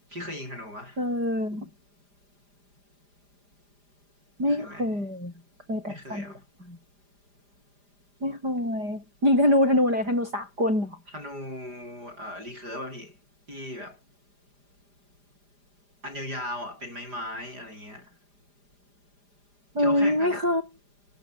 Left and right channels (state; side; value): late; left; 4.9 ms